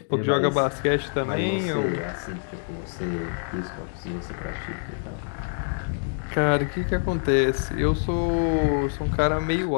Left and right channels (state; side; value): silent; right; digital silence